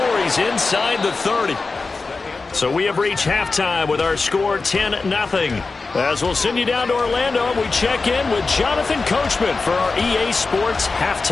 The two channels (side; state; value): right; quieter; 4.0 dB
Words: he's inside the 30. So we have reached halftime with our score 10-0. As we'll send you down to Orlando, we check in with Jonathan Coachman for our EA Sports